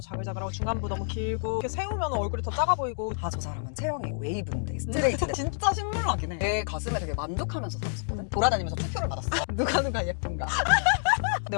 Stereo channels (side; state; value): right; silent; digital silence